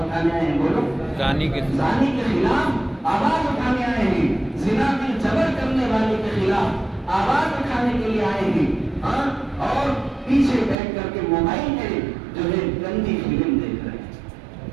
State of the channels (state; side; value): drops out; left; at 10.8 s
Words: اٹھانے آئے ہیں؟ بولو۔ زانی کے خلاف آواز اٹھانے آئے ہیں، زنا میں جبر کرنے والے کے خلاف آواز اٹھانے کے لیے آئے ہیں، اور پیچھے بیٹھ کر کے موبائل میں جو ہے گندی فلم دیکھ رہے ہیں۔